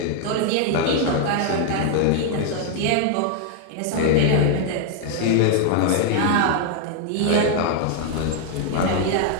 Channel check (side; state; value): both; different; correlation 0.00